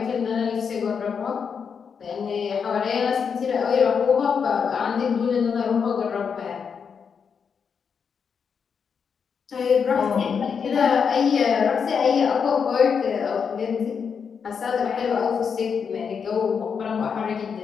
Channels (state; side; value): quieter; right; 6.4 dB